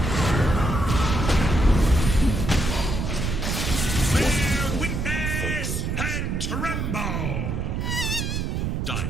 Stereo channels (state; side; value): noise; right; rumble, 1 dB below the sound